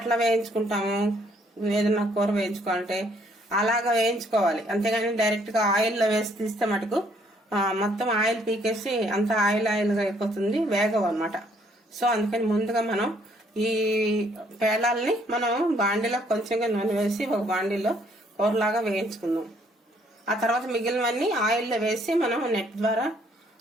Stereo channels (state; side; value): normal; both; correlation 0.66